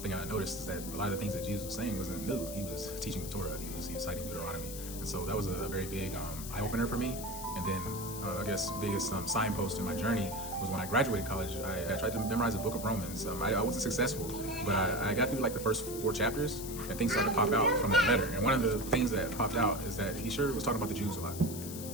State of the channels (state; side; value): noise; left; hiss, 10 dB below the sound